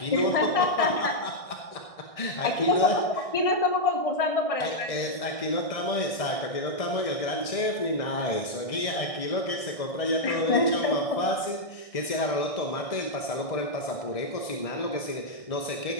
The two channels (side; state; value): right; late; 1.6 ms